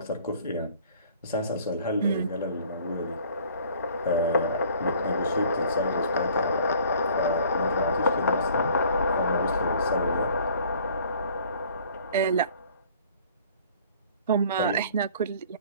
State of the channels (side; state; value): both; inverted; correlation -0.53